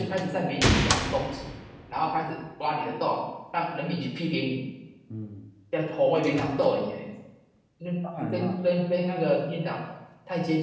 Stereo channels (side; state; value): both; identical; correlation 1.00